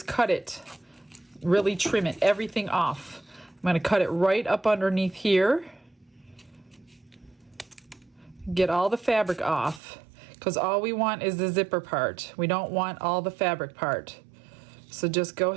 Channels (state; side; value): drops out; left; at 9.8 s